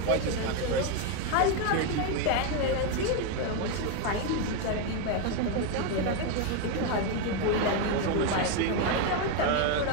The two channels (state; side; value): different; both; correlation 0.02